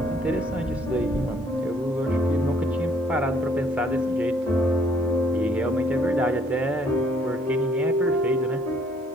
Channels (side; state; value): both; normal; correlation 0.63